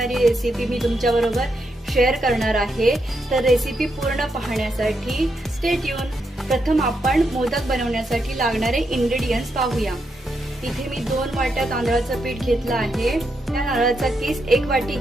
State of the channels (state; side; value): normal; both; correlation 0.82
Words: रेसिपी मी तुमच्या बरोबर शेअर करणार आहे. तर रेसिपी पूर्ण पाहण्यासाठी स्टे ट्यून. प्रथम आपण मोदक बनवण्यासाठी लागणारे इंग्रेडियंट्स पाहूया. इथे मी 2 वाट्या तांदळाचं पीठ घेतलं आहे. त्या नारळाचा किस 1 वाटी